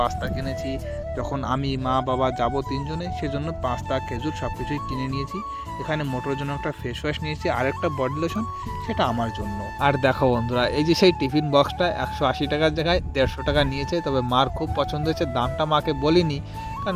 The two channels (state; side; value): identical; both; correlation 1.00